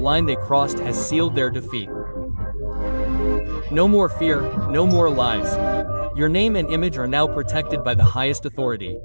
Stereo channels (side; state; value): both; inverted; correlation -1.00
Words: they crossed has sealed their defeat. No more fear, no more lies. Your name and image are now protected by the highest authority.